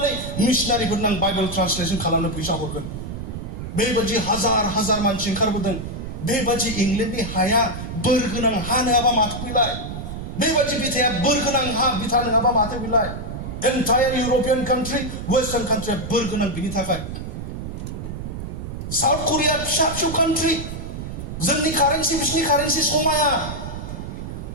मिशनारिफोरनो आं बाइबेल ट्रान्सलेसन खालामनो फैसा हरगोन। बेबादि हाजार हाजार मानसि ओंखारबोदों। बेबादि इंलेन्डनि हाया बोर गोनां हा नङाबा माथो बिलाय? बेबादि बिथाया बोर गोनां हा बिथा नङाबा माथो बिलाय? एन्टायार इउरपियान कान्ट्रि, वेस्टार्न कान्ट्रिया बोर गोनां बिनि थाखाय। साउथ करिया फिसा फिसौ कान्ट्रि, जोंनि कारेन्सि बिसिनि कारेन्सि समाया।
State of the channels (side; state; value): right; noise; rumble, 7 dB below the sound